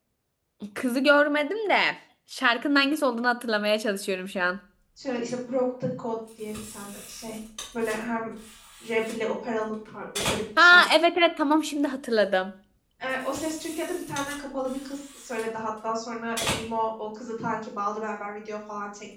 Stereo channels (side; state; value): both; identical; correlation 1.00